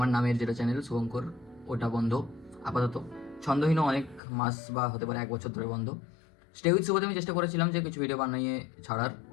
নামের যেটা চ্যানেল শুভঙ্কর ওটা বন্ধ আপাতত। ছন্দহীনও অনেক মাস বা হতে পারে 1 বছর ধরে বন্ধ। স্টে উইথ শুভতে আমি চেষ্টা করেছিলাম যে কিছু ভিডিও বানিয়ে ছাড়ার,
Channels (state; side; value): drops out; right; at 4.2 s